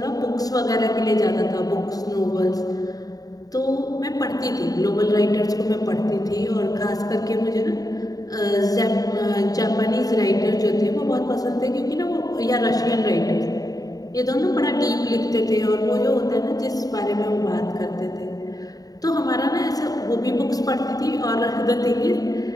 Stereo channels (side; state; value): right; late; 0.18 ms